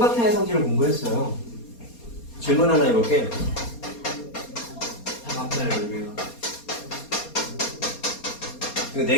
성질을 공부했어요. 질문 하나 해볼게. 앞에 여기가. 이거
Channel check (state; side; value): late; right; 4.3 ms